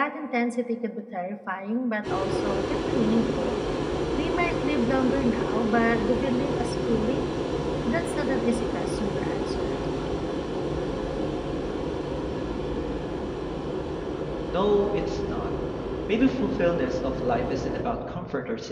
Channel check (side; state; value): both; identical; correlation 1.00